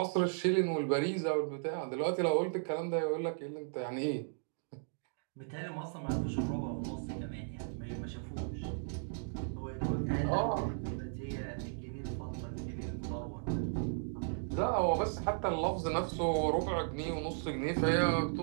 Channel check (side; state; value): left; silent; digital silence